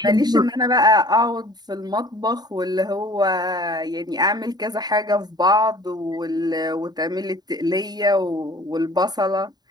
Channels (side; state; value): left; late; 0.20 ms